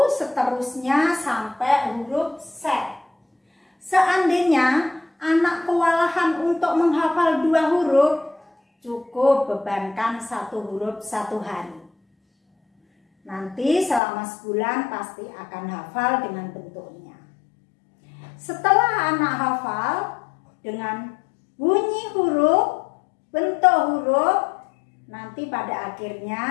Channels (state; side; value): drops out; right; at 14.0 s